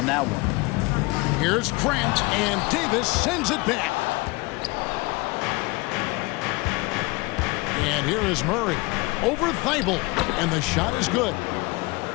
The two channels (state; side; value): quieter; right; 24.9 dB